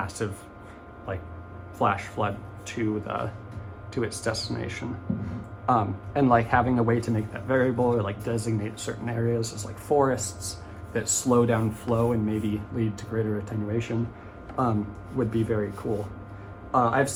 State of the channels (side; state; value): both; identical; correlation 1.00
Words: like flash flood to its destination. And like having a way to make that variable, or like designate certain areas as like forests that slow down flow and maybe lead to greater attenuation, would be very cool. I've